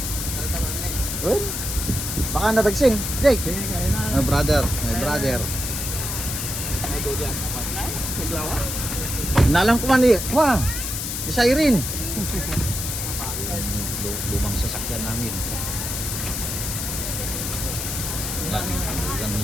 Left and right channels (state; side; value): noise; left; hiss, 3 dB below the sound